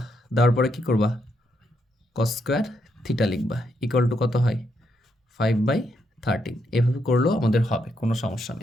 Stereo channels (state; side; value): normal; both; correlation 0.78